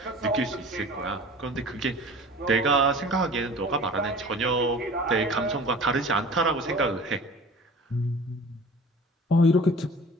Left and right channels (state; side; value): normal; both; correlation 0.42